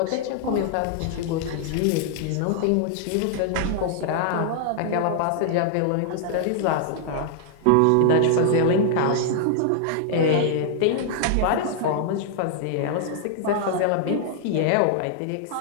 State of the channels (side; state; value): both; different; correlation -0.01